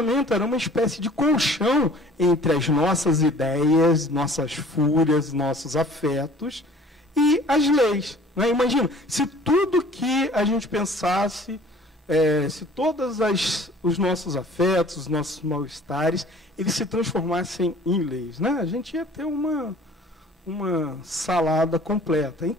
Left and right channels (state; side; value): normal; both; correlation 0.50